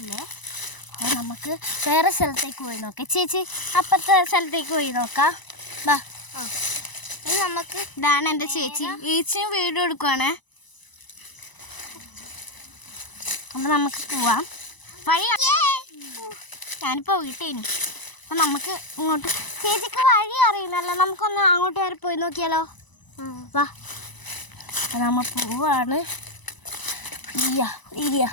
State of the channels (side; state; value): right; late; 1.0 ms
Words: അപ്പോൾ നമുക്ക് വേറെ സ്ഥലത്തേക്ക് പോയി നോക്കാം. ചേച്ചി അപ്പുറത്തെ സ്ഥലത്തേക്ക് പോയി നോക്കാം. വാ. ഇനി നമുക്ക് ഇതാണ് എൻ്റെ ചേച്ചിയും വീഡിയോ എടുക്കുവാണേ. അപ്പം നമുക്ക് പോവാം. വഴി ഞാനിപ്പോൾ വീട്ടേനു. അപ്പം നമുക്ക് ഇങ്ങോട്ട് ചേച്ചിക്ക് വഴി അറിയുന്നല്ലോ. നമുക്കൊന്ന് അങ്ങോട്ട് വരെ പോയി നോക്കിയാലോ. വാ. അപ്പം നമ്മൾ പോവാണ്.